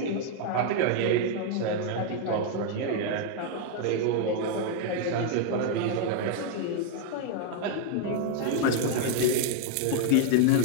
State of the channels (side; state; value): both; different; correlation 0.00